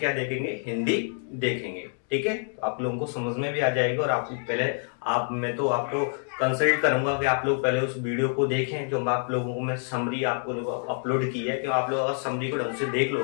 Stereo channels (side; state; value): right; silent; 56 dB below the other